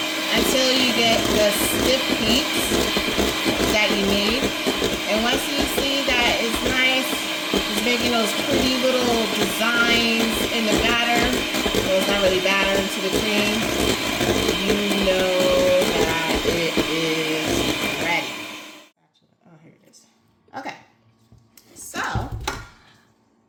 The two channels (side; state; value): both; identical; correlation 1.00